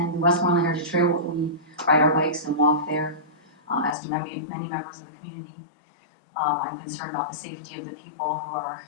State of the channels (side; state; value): right; drops out; at 4.0 s